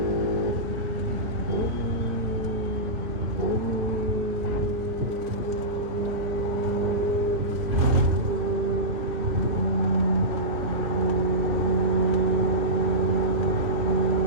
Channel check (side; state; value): left; late; 2.9 ms